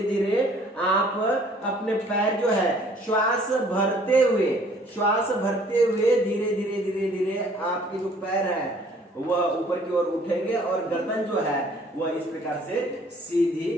धीरे आप अपने पैर जो है श्वास भरते हुए धीरे धीरे धीरे धीरे आपके जो पैर है वह ऊपर की ओर उठेंगे और गर्दन जो है वह इस प्रकार से सीधी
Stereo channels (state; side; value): normal; both; correlation 0.57